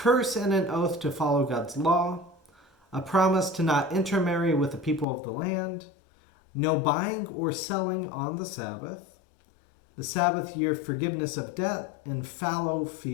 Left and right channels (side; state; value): right; drops out; at 5.1 s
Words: and an oath to follow God's law, a promise to not intermarry with the people of the land, no buying or selling on the Sabbath year forgiveness of debt and fallow